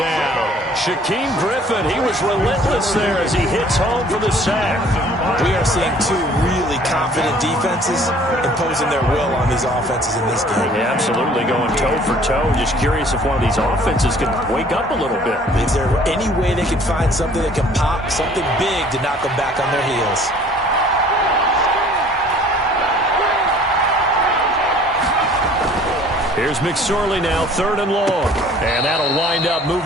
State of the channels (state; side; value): normal; both; correlation 0.54